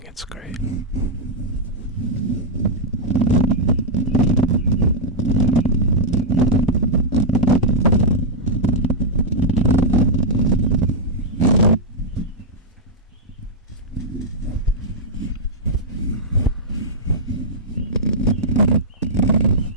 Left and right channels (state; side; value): normal; both; correlation -0.06